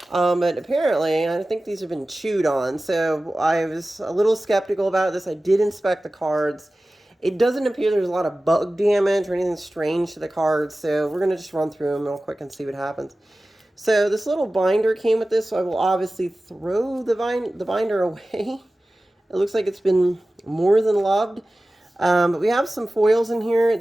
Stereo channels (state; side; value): normal; both; correlation 0.96